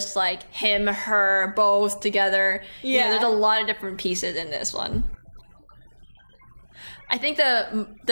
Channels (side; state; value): both; inverted; correlation -1.00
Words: like him, her, both together. You know, there's a lot of different pieces in this one. I think